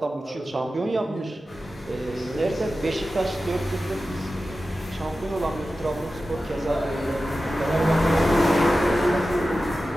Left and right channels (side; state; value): both; normal; correlation 0.94